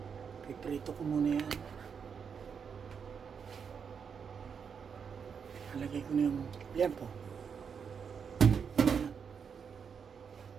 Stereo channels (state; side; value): quieter; left; 6.6 dB